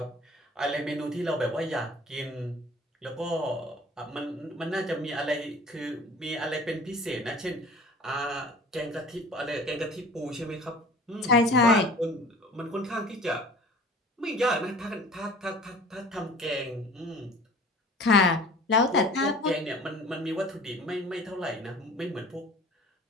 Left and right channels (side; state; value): both; normal; correlation 0.45